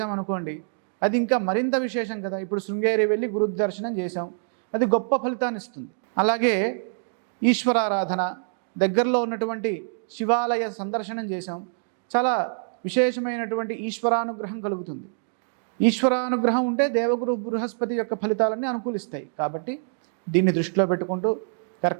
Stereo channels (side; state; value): left; silent; digital silence